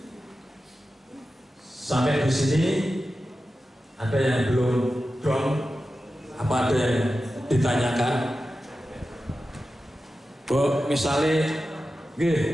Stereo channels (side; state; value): both; normal; correlation 0.93